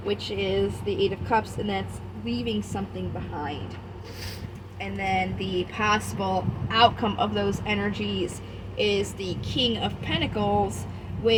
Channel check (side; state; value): both; identical; correlation 1.00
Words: which is the Eight of Cups, and that's leaving something behind. And then the possible outcome of those energies is the King of Pentacles,